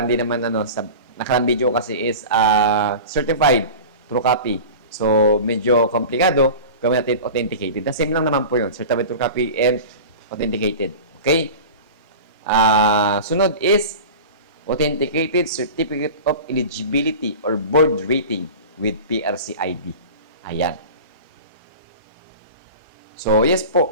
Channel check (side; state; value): both; inverted; correlation -0.34